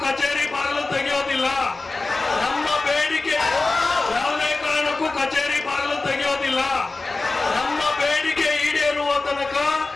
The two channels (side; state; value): right; quieter; 3.5 dB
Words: ಕಚೇರಿ ಬಾಗಿಲು ತೆಗೆಯೋದಿಲ್ಲ. ನಮ್ಮ ಬೇಡಿಕೆ ಯಾವುದೇ ಕಾರಣಕ್ಕೂ ಕಚೇರಿ ಬಾಗಿಲು ತೆಗೆಯೋದಿಲ್ಲ. ನಮ್ಮ ಬೇಡಿಕೆ ಈಡೇರುವ ತನಕ